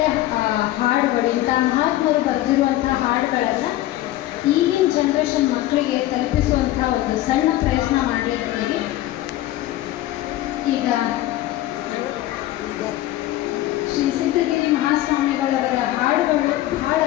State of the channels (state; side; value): quieter; right; 15.1 dB